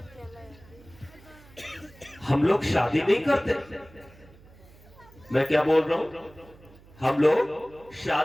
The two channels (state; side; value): noise; right; hum, 24 dB below the sound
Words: हम लोग शादी नहीं करते। मैं क्या बोल रहा हूं? हम लोग